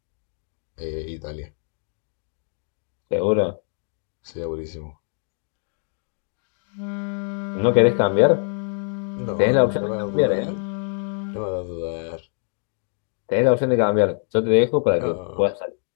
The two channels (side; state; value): right; silent; 62 dB below the other